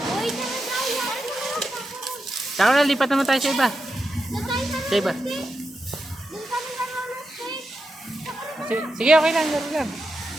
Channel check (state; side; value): normal; both; correlation 0.87